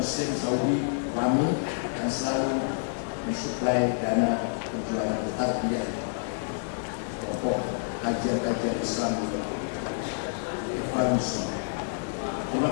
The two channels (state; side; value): silent; right; digital silence